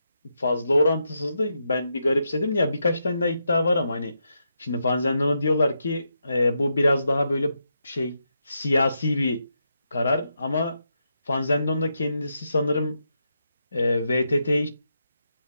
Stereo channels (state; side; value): inverted; both; correlation -0.83